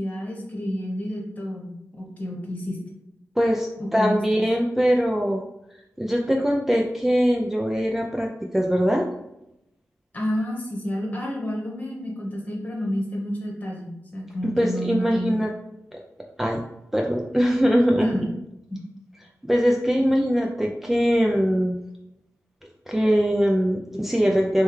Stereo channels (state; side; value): normal; both; correlation 0.97